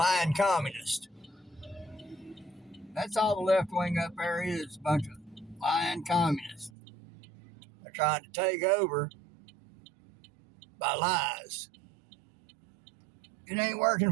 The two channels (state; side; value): drops out; left; at 6.7 s